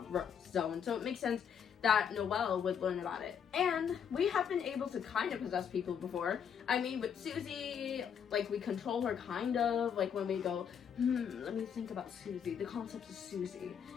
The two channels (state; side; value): quieter; right; 7.8 dB